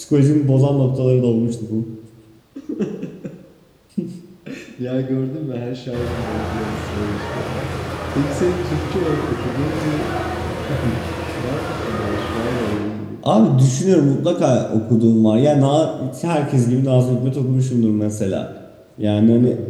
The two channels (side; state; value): both; identical; correlation 1.00